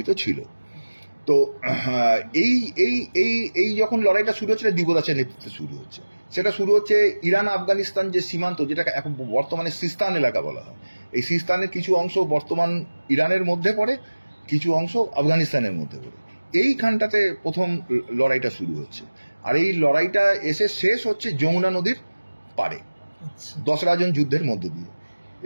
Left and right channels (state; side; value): inverted; both; correlation -1.00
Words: ছিল। তো এই এই এই এই যখন লড়াইটা শুরু হচ্ছে, দিবদাসের নেতৃত্বে শুরু হচ্ছে। সেটা শুরু হচ্ছে ইরান আফগানিস্তান যে সীমান্ত, যেটাকে এখন বর্তমানে সিস্তান এলাকা বলা হয়। এই সিস্তানের কিছু অংশ বর্তমান ইরানের মধ্যে পড়ে, কিছু অংশ আফগানিস্তানের মধ্যে পড়ে। এইখানটাতে প্রথম লড়াইটা শুরু হচ্ছে, আর এই লড়াইটা এসে শেষ হচ্ছে যমুনা নদীর পাড়ে দশরাজন যুদ্ধের মধ্য দিয়ে।